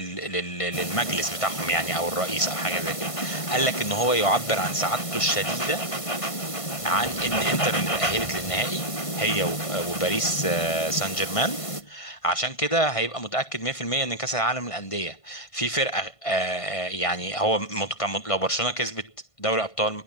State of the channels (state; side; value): late; right; 1.5 ms